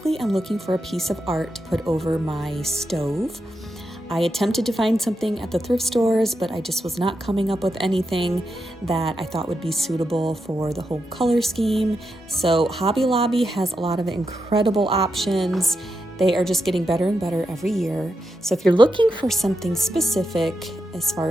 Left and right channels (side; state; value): both; normal; correlation 0.86